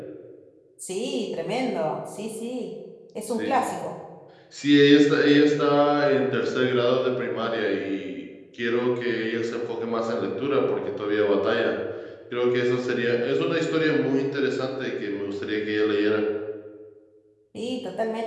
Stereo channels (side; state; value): both; identical; correlation 1.00